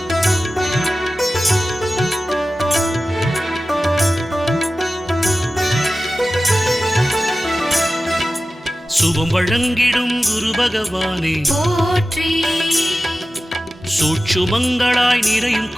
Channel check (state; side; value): normal; both; correlation 0.95